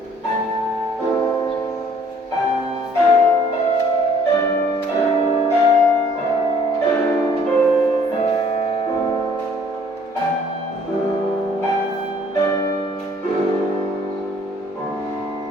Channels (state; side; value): normal; both; correlation 0.59